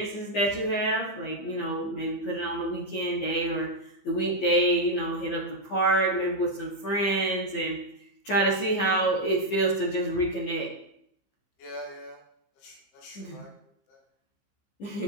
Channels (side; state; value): right; late; 15 ms